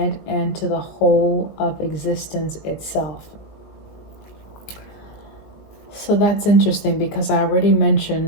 and to the whole of existence itself. So that's interesting because I already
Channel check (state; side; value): late; right; 19 ms